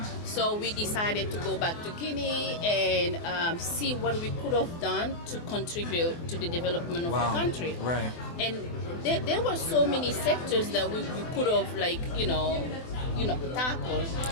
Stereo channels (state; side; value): late; right; 24 ms